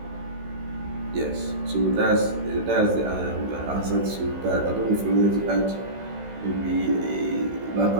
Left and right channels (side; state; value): left; late; 16 ms